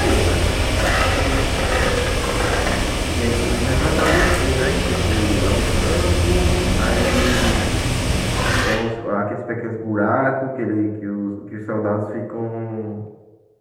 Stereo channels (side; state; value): both; identical; correlation 1.00